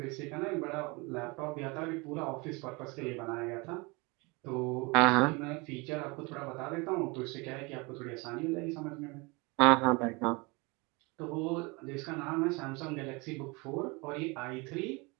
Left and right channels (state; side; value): quieter; left; 27.3 dB